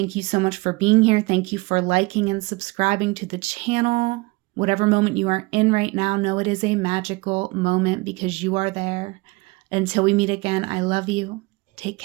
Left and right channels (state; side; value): quieter; left; 24.5 dB